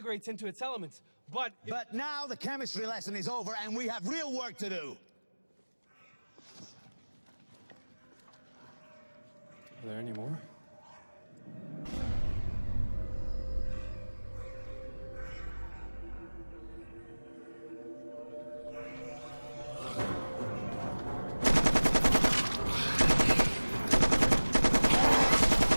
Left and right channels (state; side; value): inverted; both; correlation -1.00